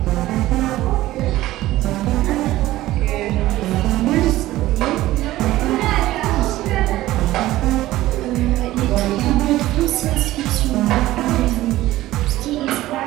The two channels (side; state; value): left; quieter; 16.0 dB